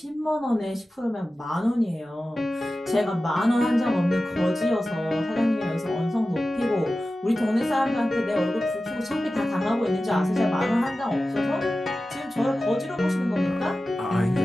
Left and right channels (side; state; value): both; normal; correlation 0.95